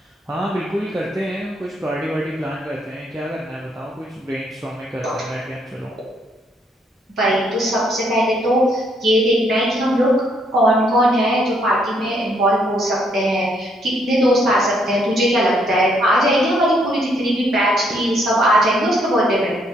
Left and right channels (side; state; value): both; normal; correlation 0.71